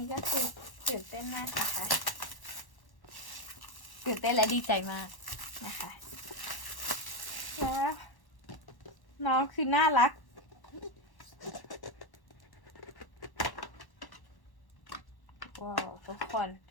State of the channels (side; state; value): right; late; 1.1 ms